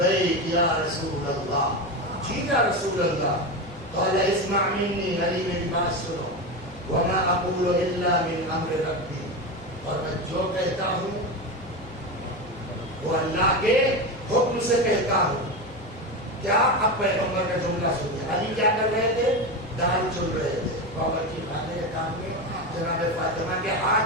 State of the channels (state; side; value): normal; both; correlation 0.18